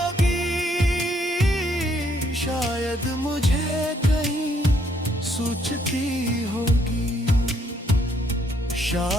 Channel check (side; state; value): both; normal; correlation 0.70